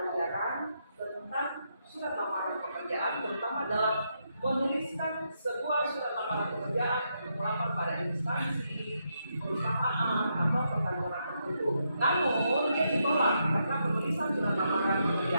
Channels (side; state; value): both; inverted; correlation -0.80